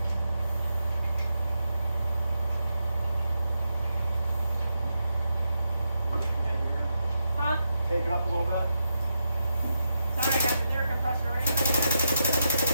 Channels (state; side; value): inverted; both; correlation -0.84